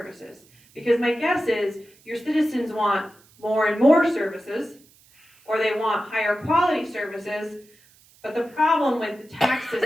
Because my guess is your citizens want more and more services, or they want higher quality services, but the problem with the tax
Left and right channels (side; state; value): right; noise; hiss, 29 dB below the sound